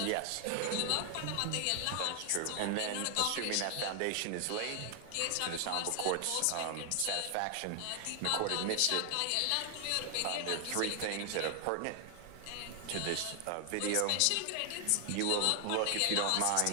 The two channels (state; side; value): different; both; correlation 0.00